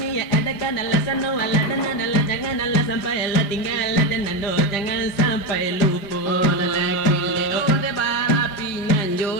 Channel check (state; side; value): late; right; 5.0 ms